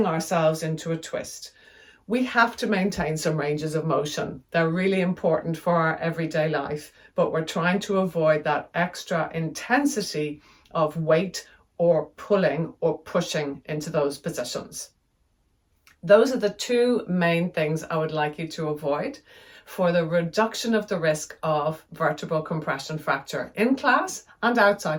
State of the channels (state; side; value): identical; both; correlation 1.00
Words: ourselves into a twist. We have to maintain some ranges of motion. They're really important for our everyday life, but we're trying to avoid that extra intensity of weight or pulling or pushing into those positions. Those are the two main things I would like you to avoid for the reduction of the risk of vertebral compression fracture in class and